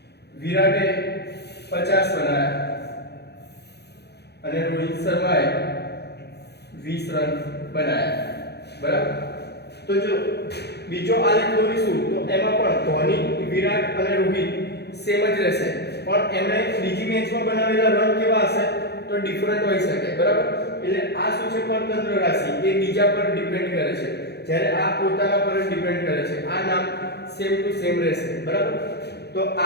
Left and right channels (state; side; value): late; right; 0.48 ms